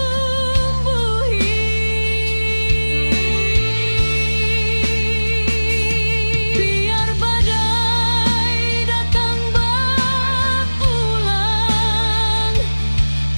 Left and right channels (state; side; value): inverted; both; correlation -1.00